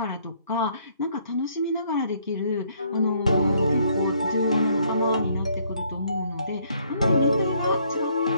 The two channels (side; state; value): both; inverted; correlation -0.66